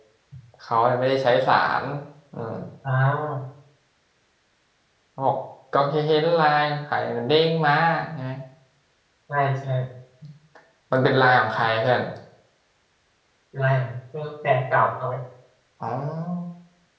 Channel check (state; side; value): identical; both; correlation 1.00